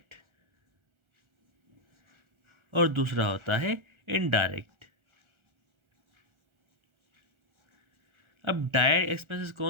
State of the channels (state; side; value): late; left; 1.4 ms